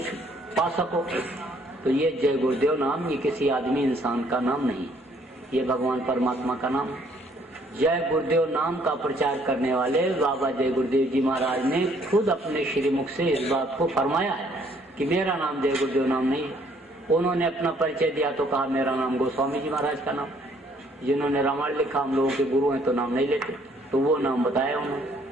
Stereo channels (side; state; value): both; normal; correlation 0.64